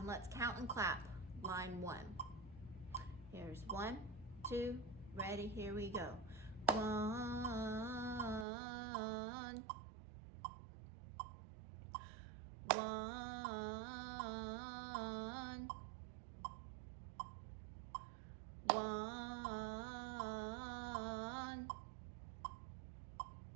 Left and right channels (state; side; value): drops out; left; at 8.5 s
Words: let's count and clap. Line 1. Here's 1, 2, ready, here we go. 1, 1, 1, 1.